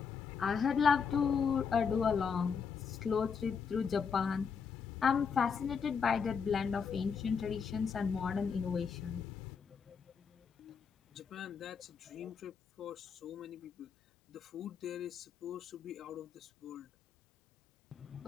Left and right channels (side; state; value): right; quieter; 6.2 dB